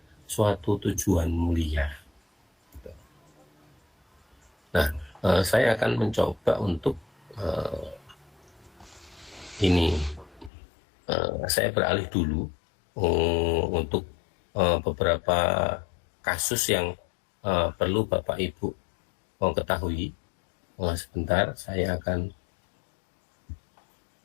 suatu tujuan mulia. Nah, saya akan mencoba untuk ini. Saya beralih dulu untuk beberapa kasus yang perlu Bapak Ibu ketahui. Sebentar, saya akan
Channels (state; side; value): drops out; right; at 10.5 s